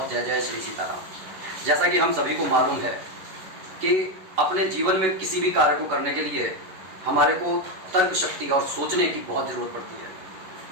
जय जय श्री सीताराम। जैसा कि हम सभी को मालूम है कि अपने जीवन में किसी भी कार्य को करने के लिए हमारे को तर्क शक्ति और सोचने की बहुत ज़रूरत पड़ती है।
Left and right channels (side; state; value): left; late; 11 ms